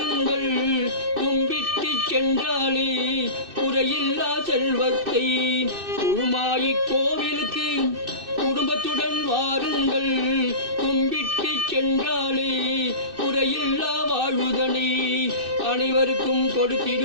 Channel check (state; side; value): late; left; 2.6 ms